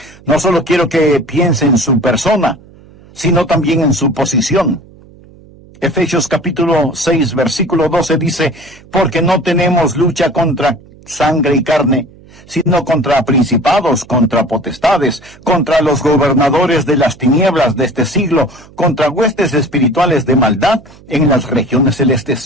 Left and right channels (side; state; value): right; noise; hum, 24 dB below the sound